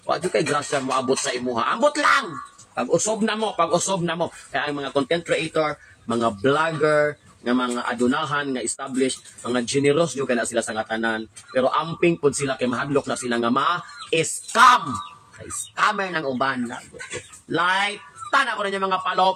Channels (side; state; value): both; identical; correlation 1.00